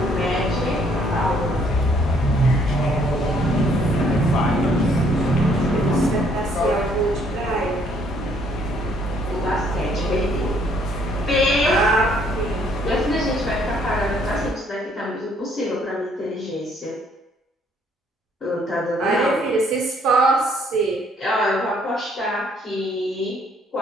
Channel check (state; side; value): normal; both; correlation 0.65